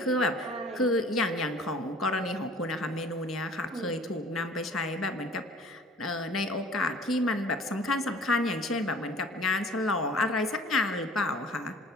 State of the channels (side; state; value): both; normal; correlation 0.48